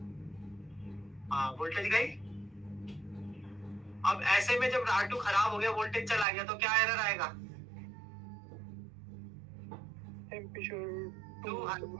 हाँ वोल्टेज गई। अब ऐसे में जब R2 खराब हो गया, वोल्टेज चला गया, तो क्या एरर आएगा? Temperature too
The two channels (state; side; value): drops out; left; at 6.2 s